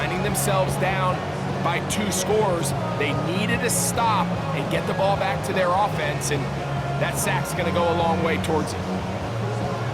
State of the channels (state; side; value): identical; both; correlation 1.00